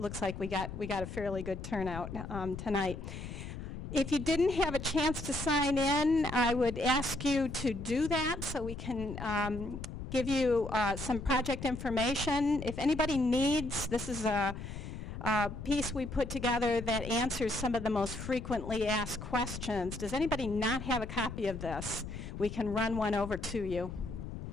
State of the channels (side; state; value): left; noise; rumble, 8 dB below the sound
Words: like we got a fairly good turnout tonight. If you didn't have a chance to sign in, I would ask you to do that so we can give you some project information. If anybody needs, this is a piece we put together that answers some of the most frequently asked questions. Does anybody not have a copy of this? We can run one over to you.